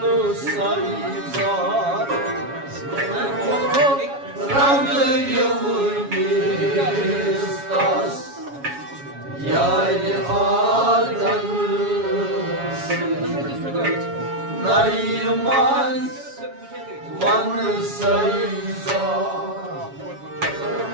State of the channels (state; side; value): late; left; 7.2 ms